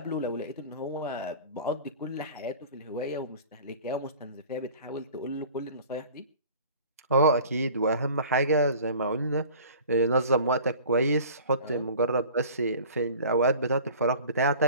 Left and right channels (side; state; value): both; inverted; correlation -0.44